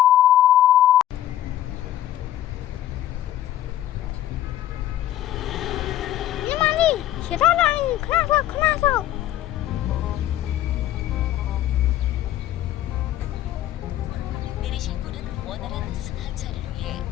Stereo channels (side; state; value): right; quieter; 12.9 dB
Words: ညီမလေးရထားလာရင်ခဏဆော့ 내리실 분은 원활한 승하차를 위해